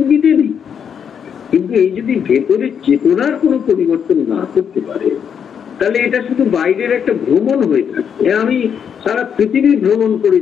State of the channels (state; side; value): quieter; right; 7.7 dB